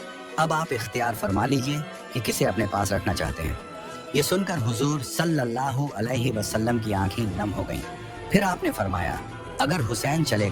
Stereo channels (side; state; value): both; identical; correlation 1.00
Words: अब आप इख्तियार फरमा लीजिए कि किसे अपने पास रखना चाहते हैं। ये सुनकर हुजूर सल्लल्लाहु अलैहि वसल्लम की आंखें नम हो गईं। फिर आपने फरमाया, अगर हुसैन चले